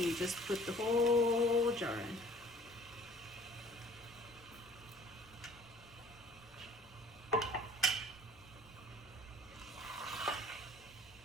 you just put the whole jar in.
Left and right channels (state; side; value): noise; left; hum, 27 dB below the sound